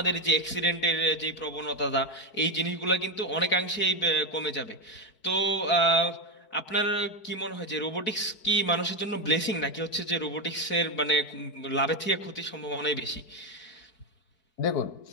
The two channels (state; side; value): late; right; 4.6 ms